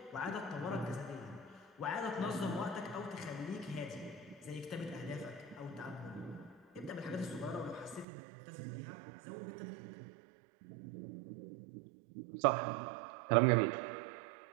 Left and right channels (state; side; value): drops out; left; at 8.1 s